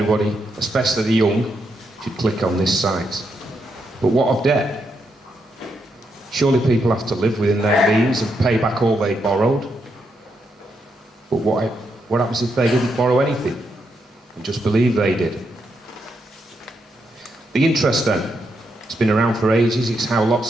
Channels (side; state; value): both; normal; correlation 0.81